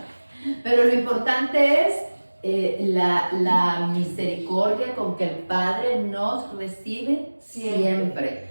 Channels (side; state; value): both; inverted; correlation -1.00